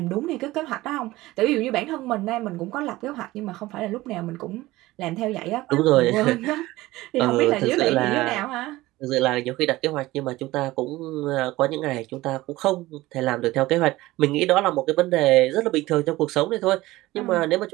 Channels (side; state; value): left; quieter; 18.2 dB